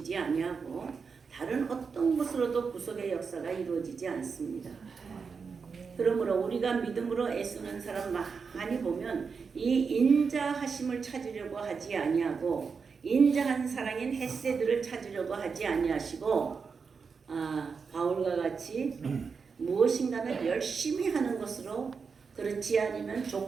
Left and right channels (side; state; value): left; quieter; 5.4 dB